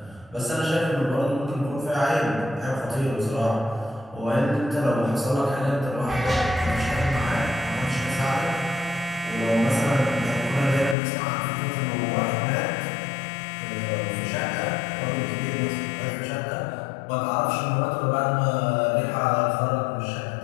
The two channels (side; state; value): right; drops out; at 11.0 s